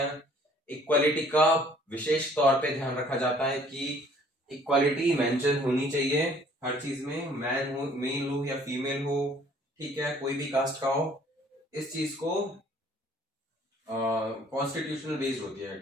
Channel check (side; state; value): both; normal; correlation 0.57